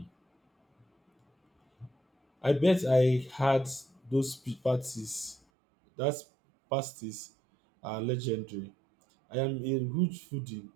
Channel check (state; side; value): drops out; left; at 5.4 s